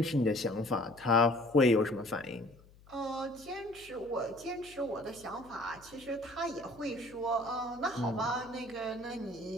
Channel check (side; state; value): left; noise; hum, 24 dB below the sound